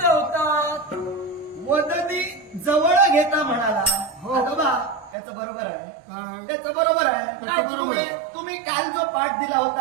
होता. वदनी जवळ घेता म्हणाला. हो बा त्याचं बरोबर आहे. त्याचं बरोबर आहे. तुम्ही काल जो पाठ दिला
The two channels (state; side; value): drops out; left; at 5.2 s